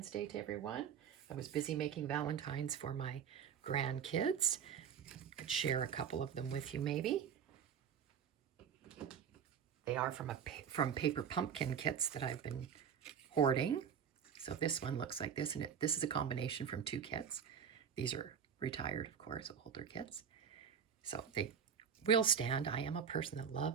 Day to everyone. I was busy making Valentines for my grandkids. I'd share a couple of them with you maybe. They are from paper pumpkin kits that I've been hoarding. So this one looks like this, and this is a combination from 2 kits. These are retired, of course, older kits. So they will stand. I am a person that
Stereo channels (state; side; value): quieter; left; 7.7 dB